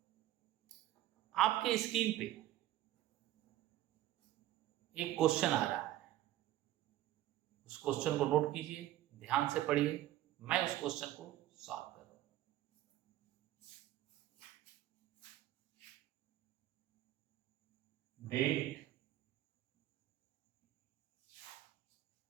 आपके स्क्रीन पे एक क्वेश्चन आ रहा है, उस क्वेश्चन को नोट कीजिए, ध्यान से पढ़िए, मैं उस क्वेश्चन को सॉल्व कर रहा हूं। Date,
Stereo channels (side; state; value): left; quieter; 14.3 dB